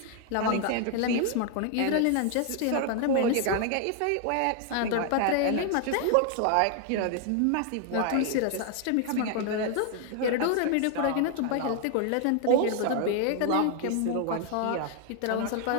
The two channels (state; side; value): different; both; correlation 0.00